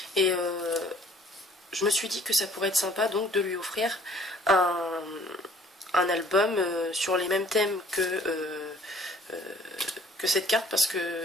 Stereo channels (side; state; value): both; normal; correlation 0.55